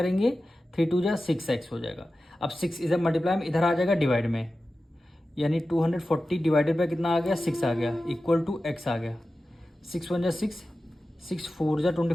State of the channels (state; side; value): normal; both; correlation 0.94